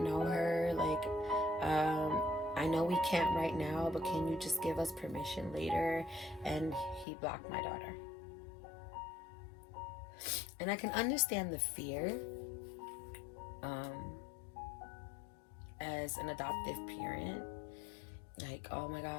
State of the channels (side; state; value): right; drops out; at 7.1 s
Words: her. Like, I know we can't right now, but can you just give us permission later? And he blocked my daughter. And I can understand the fear as an adoptive parent. Like, oh my